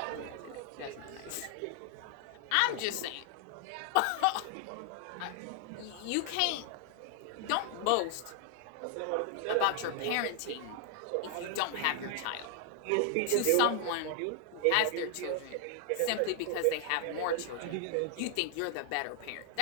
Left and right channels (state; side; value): different; both; correlation 0.00